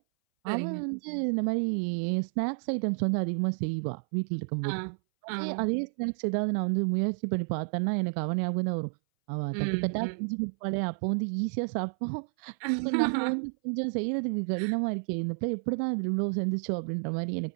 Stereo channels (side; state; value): left; silent; 58 dB below the other